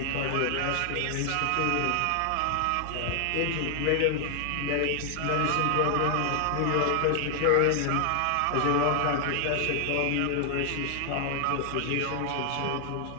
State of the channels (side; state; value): both; different; correlation 0.00